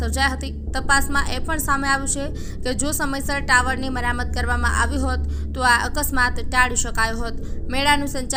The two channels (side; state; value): both; identical; correlation 1.00